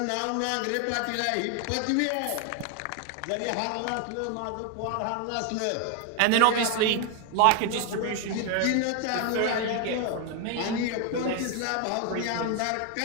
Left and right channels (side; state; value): both; different; correlation 0.01